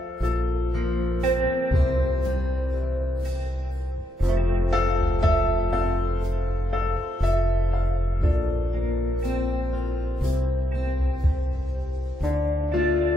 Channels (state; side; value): normal; both; correlation 0.80